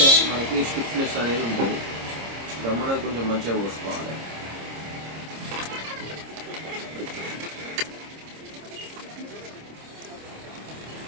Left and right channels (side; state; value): left; late; 26 ms